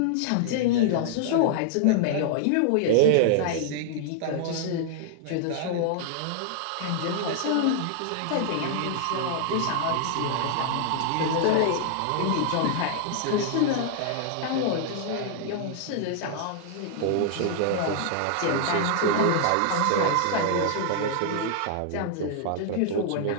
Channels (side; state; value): both; different; correlation -0.01